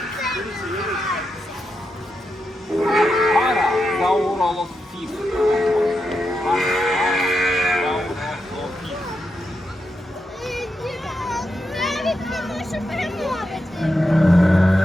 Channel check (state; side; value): normal; both; correlation 0.86